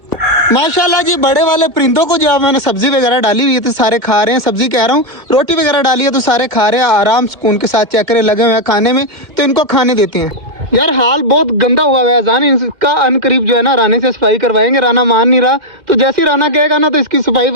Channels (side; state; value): left; late; 2.1 ms